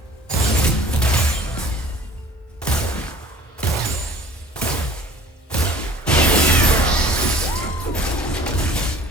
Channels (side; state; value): both; normal; correlation 0.49